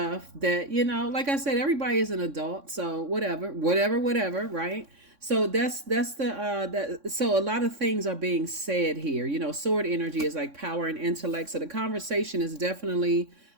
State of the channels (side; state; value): left; late; 3.6 ms